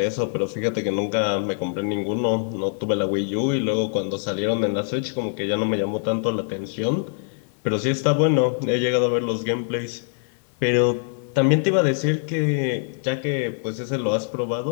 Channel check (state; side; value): silent; right; 63 dB below the other